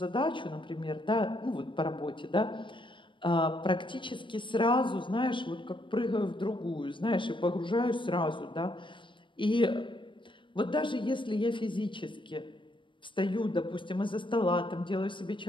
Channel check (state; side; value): late; right; 0.24 ms